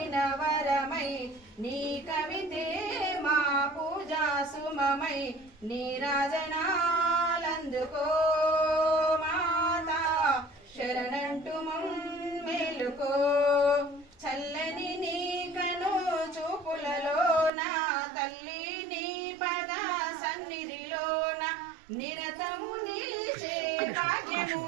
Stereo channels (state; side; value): drops out; left; at 17.5 s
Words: వరమై నీ కవితే మా పూజా సుమమై నీరాజనాలందుకో మాతా శరణంటు మమ్మేలుకో చల్లని నీ కను చూపులలోన తల్లి నీ పద సన్నిధిలోన నిరతము నిలిచే భాగ్యము